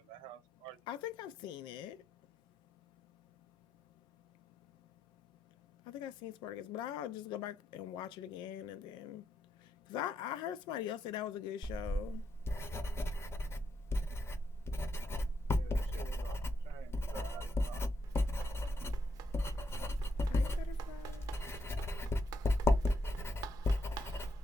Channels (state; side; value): normal; both; correlation 0.80